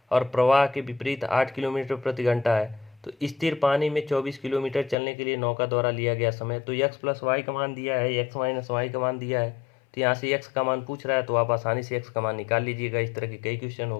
और प्रवाह के विपरीत 8 किलोमीटर प्रति घंटा है, तो स्थिर पानी में 24 किलोमीटर चलने के लिए नौका द्वारा लिया गया समय, तो x प्लस वाई का मान दिया है, x माइनस वाई का मान दिया है, तो यहाँ से x का मान पूछ रहा है, तो आप आसानी से x का मान निकाल लीजिएगा। इस तरह के कई क्वेश्चन हो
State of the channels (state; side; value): drops out; right; at 5.0 s